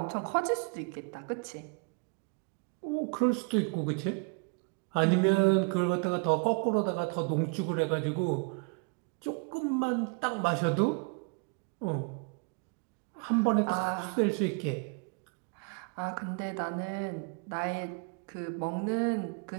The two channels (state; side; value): quieter; left; 35.0 dB